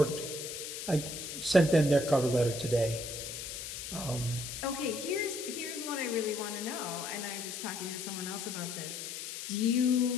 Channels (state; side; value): noise; left; hiss, 7 dB below the sound